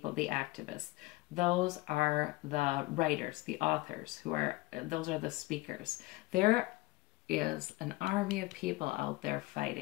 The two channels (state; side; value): quieter; right; 21.0 dB